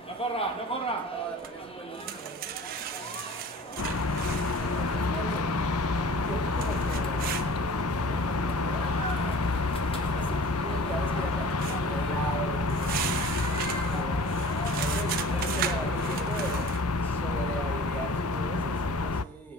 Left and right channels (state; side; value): normal; both; correlation 0.43